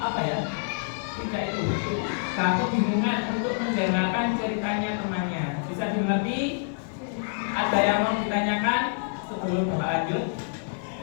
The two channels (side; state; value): right; silent; digital silence